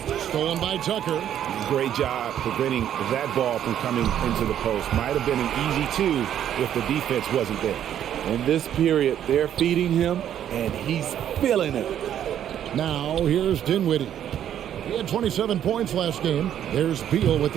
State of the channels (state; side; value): quieter; left; 10.3 dB